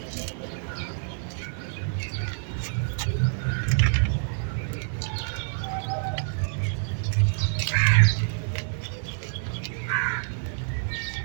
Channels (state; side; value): silent; left; 58 dB below the other